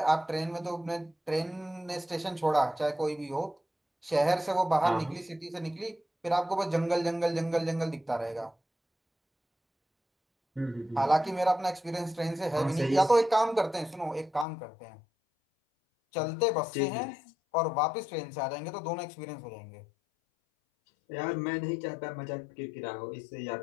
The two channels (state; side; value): drops out; right; at 14.5 s